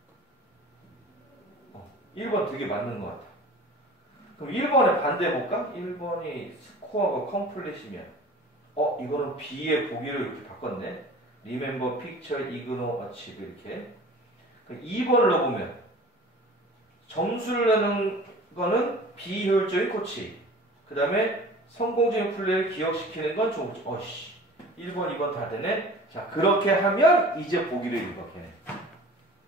1번 되게 맞는 것 같다. 그럼 1번에 반대해볼까? 1번이 스코어가 컴플릿이면 이거는 B의 보기를 이렇게 바꿨네. Remember, picture, ignore, achieve 이렇게. 그럼 2번을 넣어보면 점수를 내는 거는 비효율적인 코치. 그 다음에 성공적인 플레이를 기억시키는 건 좋은 코치. 1번, 2번 다 되네. 자, 그렇게 하면 이제 보기를 읽어, 걔네.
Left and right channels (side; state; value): both; normal; correlation 0.43